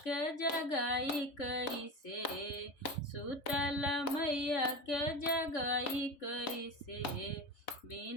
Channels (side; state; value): right; late; 3.5 ms